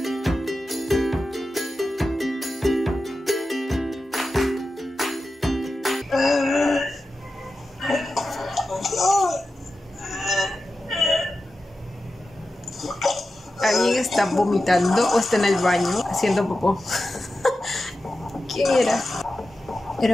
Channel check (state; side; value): normal; both; correlation 0.92